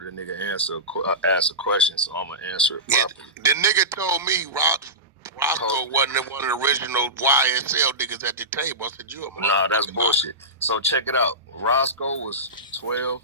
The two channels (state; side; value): normal; both; correlation -0.19